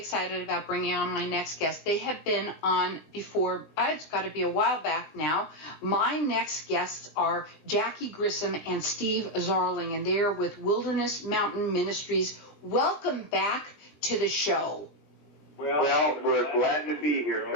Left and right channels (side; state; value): right; late; 19 ms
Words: excited about bringing on my next guest. They have been on before. It's got to be a while back now. My next guests are Jackie Grissom and Steve Zarling, and they're with Wilderness Mountain Ministries. Welcome back to the show. Well, we're glad to be here,